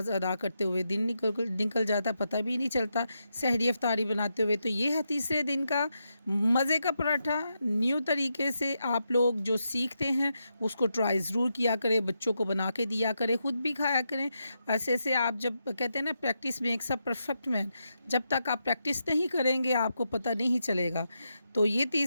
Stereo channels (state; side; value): inverted; both; correlation -0.84